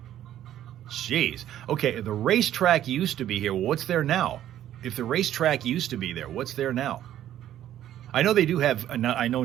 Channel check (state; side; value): quieter; left; 11.9 dB